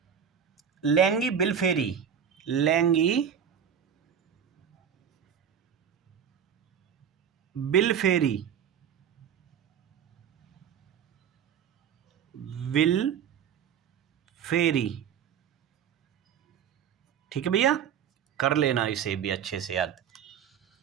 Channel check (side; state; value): left; quieter; 8.2 dB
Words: लैंगी बिलफेरी। लैंगी बिलफेरी, विल फेरी। ठीक है भैया, कर लेना इसे भी अच्छे से याद।